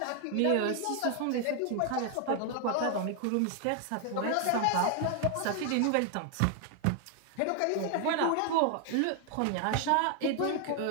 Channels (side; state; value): both; different; correlation 0.00